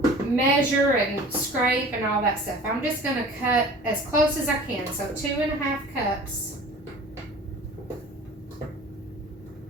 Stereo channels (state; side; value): normal; both; correlation 0.43